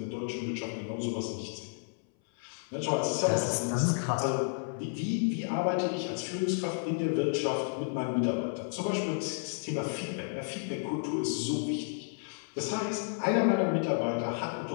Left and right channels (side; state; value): right; silent; 57 dB below the other